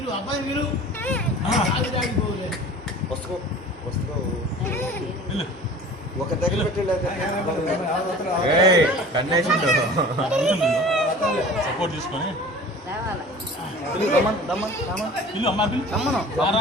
అబ్బాయి మీరు ఒక దగ్గర సపోర్ట్ తీసుకొని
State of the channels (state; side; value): normal; both; correlation 0.42